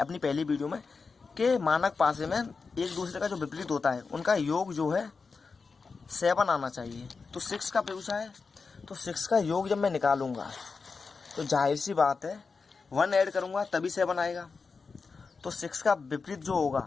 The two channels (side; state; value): right; quieter; 4.7 dB